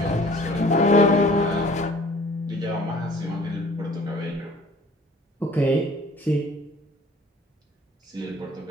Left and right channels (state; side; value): normal; both; correlation 0.51